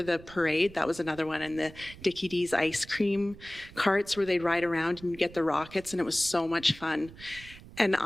the parade. That was another one, and the Dickie D's ice cream carts where they'd ride around and get the rockets, and it was so much fun. And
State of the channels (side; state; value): right; noise; rumble, 18 dB below the sound